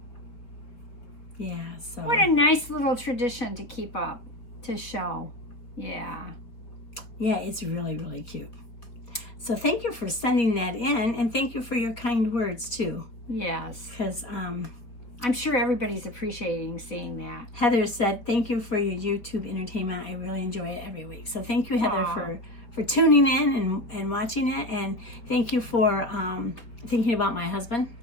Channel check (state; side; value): late; right; 4.4 ms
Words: Yeah, so. What a nice little tradition to keep up, to show. Yeah. Yeah, it's really, really cute. So thank you for sending that in, and thank you for your kind words, too. Yes. Because I'm sure everybody's appreciating seeing that. Heather said, thank you for your YouTube entertainment. I really enjoy it every week. So thank you, Heather, for tuning in and watching it. And thank you for thinking about my husband.